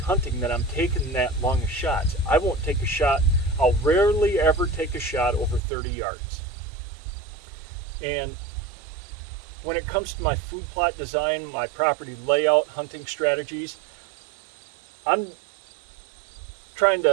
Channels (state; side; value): drops out; left; at 5.6 s